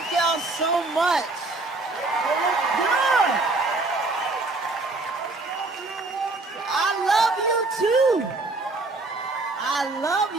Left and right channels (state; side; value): quieter; left; 3.3 dB